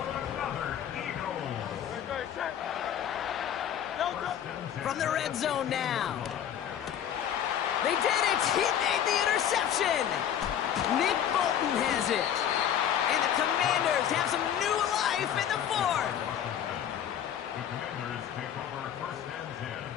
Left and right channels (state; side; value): quieter; right; 9.6 dB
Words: From the red zone now. They did it! He made the interception! Nick Bolton has it. And the Commanders have some new life in the 4th. The Commanders take over 1st and 10